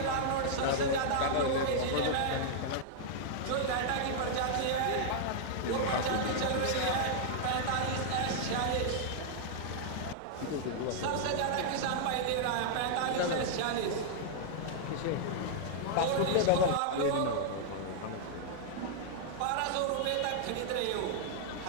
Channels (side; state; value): both; different; correlation -0.01